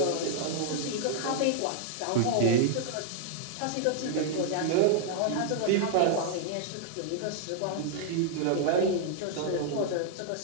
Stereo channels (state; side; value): different; both; correlation -0.01